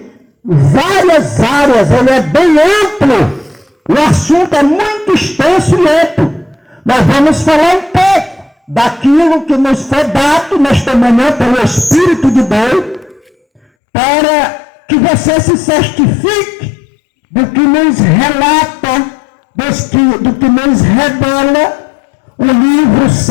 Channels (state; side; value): drops out; right; at 13.6 s